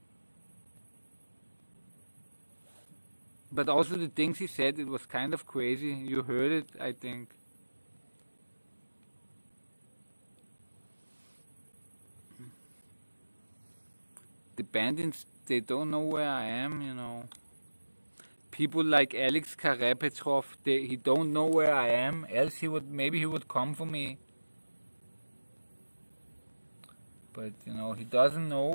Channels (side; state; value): both; inverted; correlation -1.00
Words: But also the things he said, it was kind of crazy. You heard it, I think. The bandits, they don't know where I am, People like Alex Karepetrov, he don't know where I am, else maybe he would come for me. But, he doesn't know